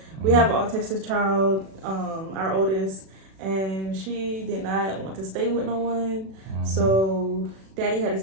We have an autistic child, our oldest, and she did not want to stay with no one. So Daddy had to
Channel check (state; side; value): late; left; 37 ms